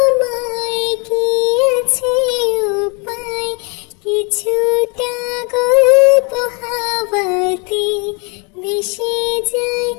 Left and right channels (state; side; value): quieter; right; 32.9 dB